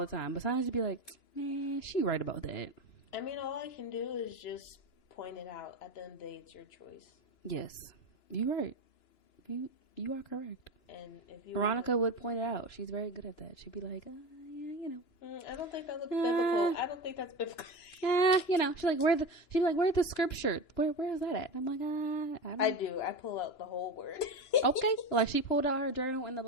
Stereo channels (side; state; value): right; late; 2.9 ms